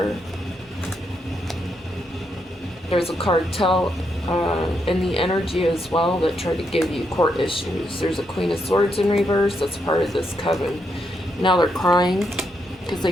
There's a cartel in the energy as well that tried to give you court issues. There's a Queen of Swords in reverse that's part of this coven. Now they're crying because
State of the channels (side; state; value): both; normal; correlation 0.79